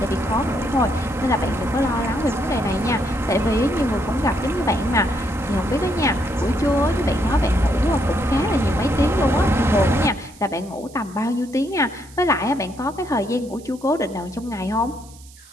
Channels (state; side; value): noise; right; hiss, 23 dB below the sound